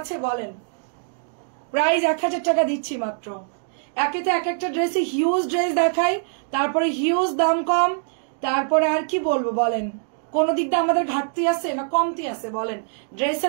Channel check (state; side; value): silent; left; digital silence